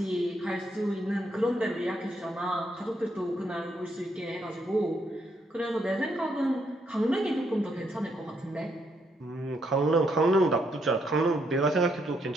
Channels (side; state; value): both; normal; correlation 0.75